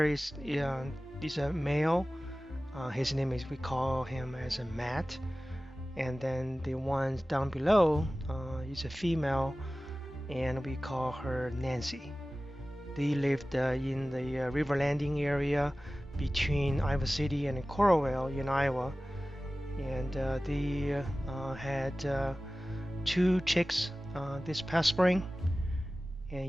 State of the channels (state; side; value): normal; both; correlation 0.97